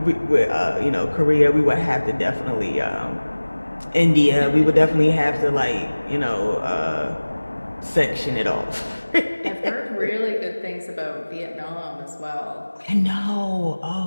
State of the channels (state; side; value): inverted; both; correlation -1.00